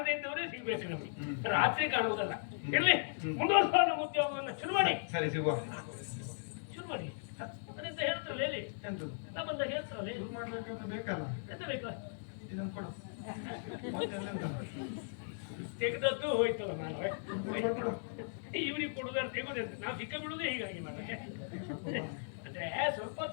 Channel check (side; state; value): right; silent; digital silence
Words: ಇದ್ದವರೇ ಸಿಗ್ಬೇಕು ನಮಗೆ, ರಾತ್ರಿ ಕಾಣುವುದಲ್ಲ. ಇರ್ಲಿ, ಮುಂದುವರ್ಸುವ ನಮ್ಮ ಉದ್ಯೋಗವನ್ನು ಶುರು ಮಾಡಿ. ಸರಿ, ಸಿಗುವ. ಶುರು ಮಾಡಿ. ಅದೆಂತ ಹೇಳ್ತಾರಲ್ಲ ಹೇಳಿ, ನಾ ಬಂದಾಗ ಹೇಳ್ತಾರಲ್ಲ ಬೇಕಲ್ಲ. ಎಂತ ಬೇಕು? ಇದನ್ನು ಕೊಡು. ತೆಗೆದದ್ದು ಹೋಯ್ತಲ್ಲ. ನಾನು ಇವ್ರಿಗೆ ಕೊಡುದಾರೆ ತೆಗೋದಂತ ನಾವು ಸಿಕ್ಕ ಬಿಡುವುದೇ ಹೀಗಾಗಿ ಮಾಡ. ಅಂದ್ರೆ ಸ್ವಲ್ಪ